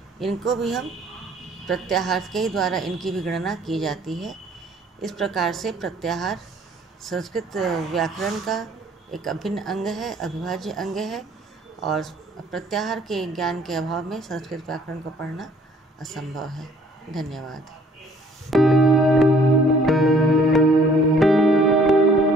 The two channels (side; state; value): both; normal; correlation 0.58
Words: इनको भी हम प्रत्याहार के ही द्वारा इनकी भी गणना की जाती है। इस प्रकार से प्रत्याहार संस्कृत व्याकरण का एक अभिन्न अंग है, अविभाज्य अंग है, और प्रत्याहार के ज्ञान के अभाव में संस्कृत व्याकरण को पढ़ना असंभव है। धन्यवाद।